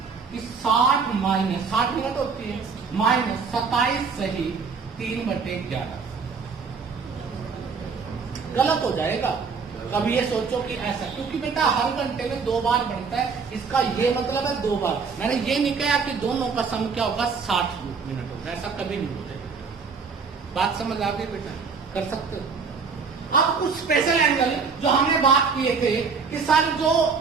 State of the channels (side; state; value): left; quieter; 5.3 dB